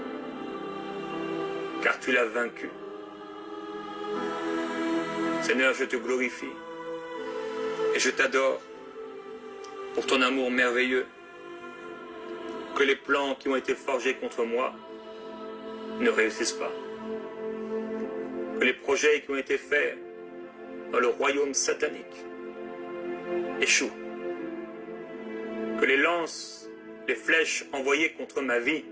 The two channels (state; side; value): identical; both; correlation 1.00